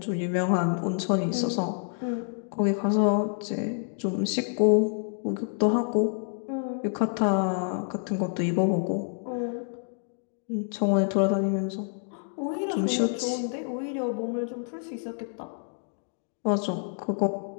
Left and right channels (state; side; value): silent; right; 59 dB below the other